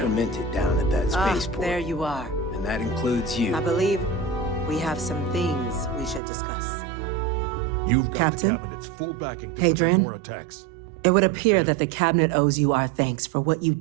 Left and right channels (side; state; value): left; drops out; at 6.2 s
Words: minted down at that Ah, spaceport. there you are. And that includes you. I believe we have some things we should discuss. You've got Captain? the Cabinet's full backing to Hadrian? more attacks. It would appear that the Cabinet owes you our thanks for what you